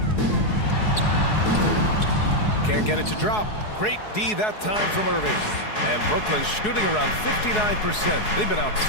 Can't get it to drop. Great D that time from Irving. And Brooklyn shooting around 59%. They've been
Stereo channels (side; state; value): right; late; 4.7 ms